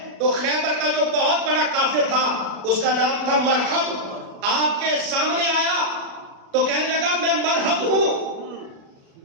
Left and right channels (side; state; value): left; late; 36 ms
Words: تو خیبر کا جو بہت بڑا کافر تھا اس کا نام تھا مرحب, آپ کے سامنے آیا تو کہنے لگا میں مرحب ہوں,